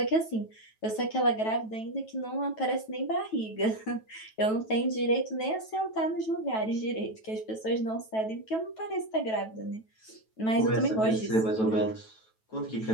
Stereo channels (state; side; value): late; right; 9.2 ms